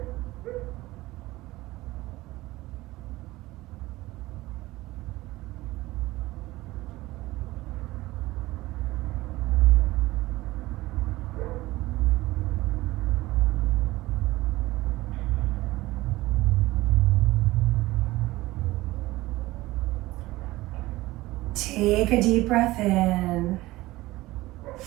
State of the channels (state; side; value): quieter; left; 18.6 dB